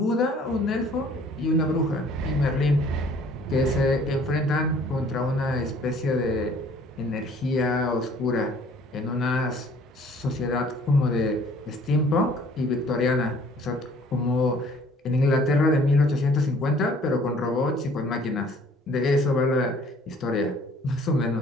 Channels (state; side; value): normal; both; correlation 0.56